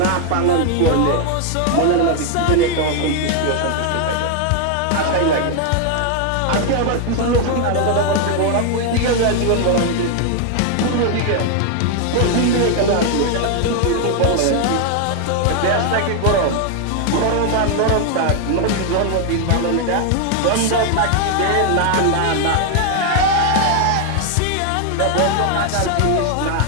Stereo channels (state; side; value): different; both; correlation 0.00